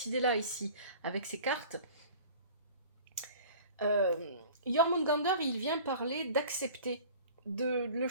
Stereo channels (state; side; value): inverted; both; correlation -0.43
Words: idée-là ici, avec ces cartes. Jormungandr, il vient parler d'accepter le